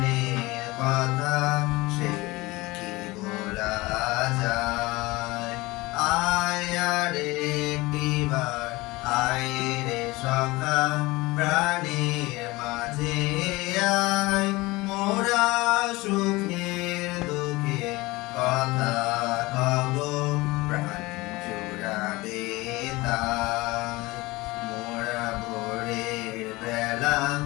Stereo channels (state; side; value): quieter; right; 21.6 dB